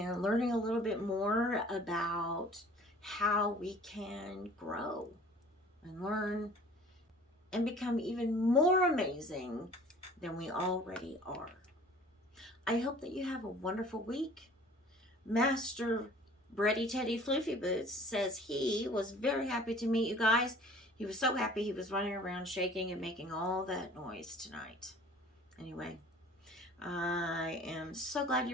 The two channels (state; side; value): normal; both; correlation 0.48